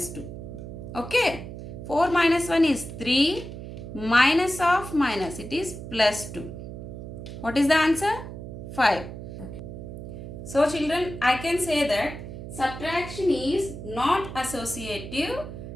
2. Okay. 4 minus 1 is 3 minus of minus, it is plus 2. What is the answer? 5. Okay. So children, I can say that subtraction is not associative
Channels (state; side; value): noise; right; hum, 10 dB below the sound